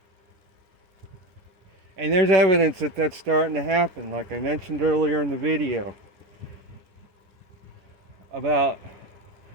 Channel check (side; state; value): left; late; 10 ms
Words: And there's evidence that that's starting to happen, like I mentioned earlier in the video, about